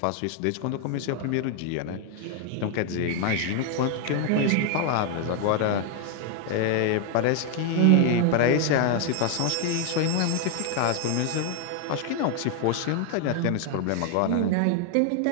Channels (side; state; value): both; different; correlation 0.00